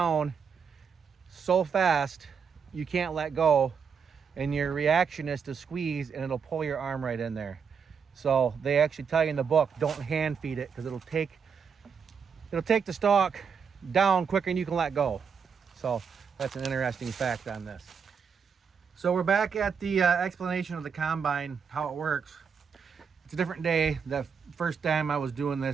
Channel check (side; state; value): left; quieter; 6.5 dB